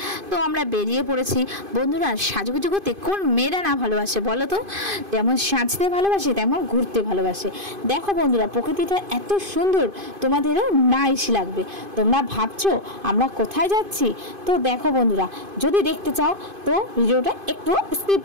তো আমরা বেরিয়ে পড়েছি। বন্ধুরা, সাজুগুজু করতে কোন মেয়েরা না ভালোবাসে বলো তো? যেমন সাজতে ভালোবাসে তেমন ঘুরতে ভালোবাসে। দেখো বন্ধুরা, প্রকৃতিটা এত সুন্দর, তোমাদেরও নাইস লাগবে। তোমরা ভাবছো আমরা কোথায় যাচ্ছি? তো দেখো বন্ধুরা, যদি দেখতে চাও তো ভিডিওটা একটু স্কিপ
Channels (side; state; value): left; late; 2.5 ms